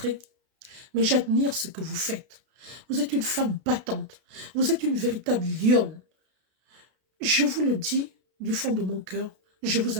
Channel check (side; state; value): left; late; 32 ms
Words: mais j'admire ce que vous faites. Vous êtes une femme battante, vous êtes une véritable lionne. Je vous le dis du fond de mon cœur, je vous